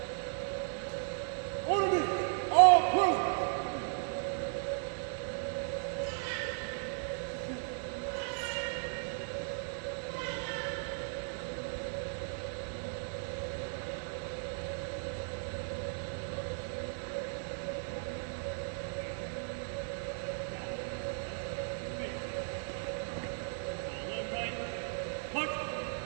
Order, all present.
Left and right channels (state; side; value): silent; left; 54 dB below the other